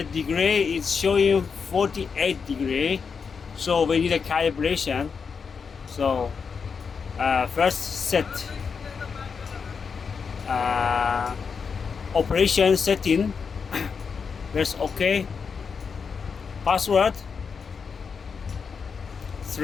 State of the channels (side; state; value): right; quieter; 5.8 dB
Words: degree is showing 48 degree. So we need a calibration. So first set operation setting. Press OK. Password